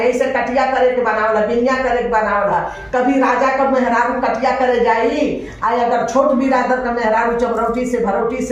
ऐसे कटिया करे के बनावल है बिनिया करे के बनावल है कभी राजा का मेहरारू कटिया करे जाई आ अगर छोट बिरादर का मेहरारू चमरौटी से भरौटी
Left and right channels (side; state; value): both; identical; correlation 1.00